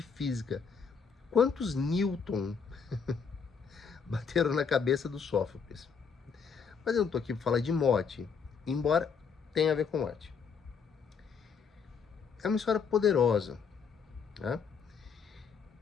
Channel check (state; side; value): quieter; right; 6.1 dB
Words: física. Quantos Newton bateram na cabeça do Sófocles? Mas eu não estou aqui para falar de morte, embora tenha a ver com morte. É uma história poderosa. Né?